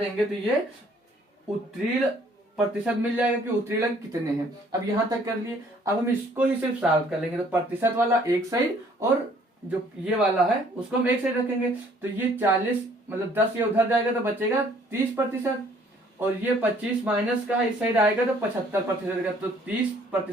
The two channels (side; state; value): both; normal; correlation 0.60